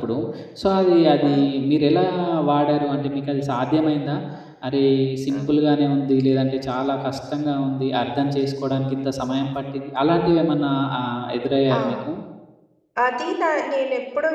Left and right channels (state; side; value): identical; both; correlation 1.00